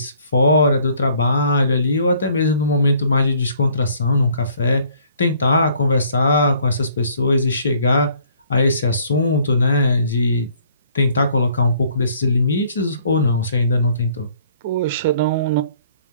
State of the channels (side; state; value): both; inverted; correlation -0.60